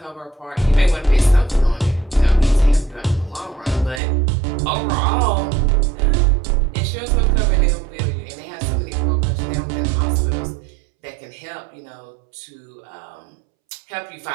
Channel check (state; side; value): drops out; left; at 4.0 s